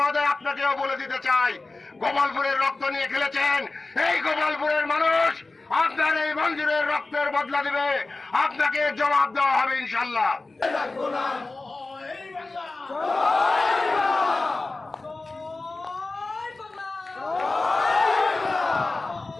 আপনাকেও বলে দিতে চাই, গোপালপুরের রক্ত নিয়ে খেলেছেন। এই গোপালপুরের মানুষ আপনার এই মঞ্জুরের রক্তের বদলা দিবে, আপনাকে জবাব দেওয়া হবে ইনশাল্লাহ।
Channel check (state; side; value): quieter; right; 3.4 dB